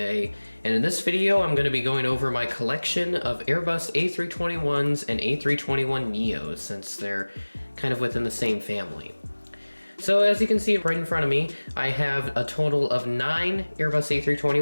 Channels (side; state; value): both; inverted; correlation -1.00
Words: and in this video I'm going to be going over my collection of Airbus A321s and A321 Neos since they're kind of within the same family. So as you can see right in front of me, I have a total of 9 Airbus